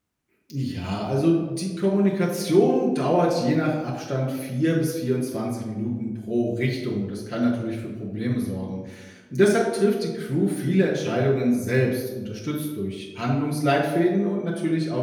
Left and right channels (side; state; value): both; identical; correlation 1.00